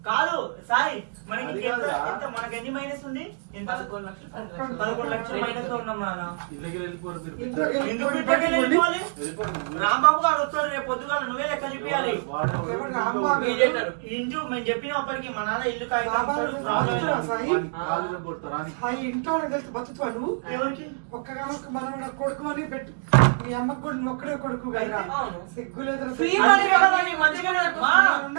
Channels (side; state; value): left; silent; digital silence